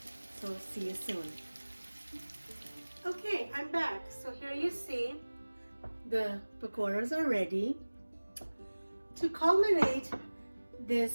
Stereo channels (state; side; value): inverted; both; correlation -1.00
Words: So see you soon. Okay, I'm back. So here you see the pakoras are ready. To culminate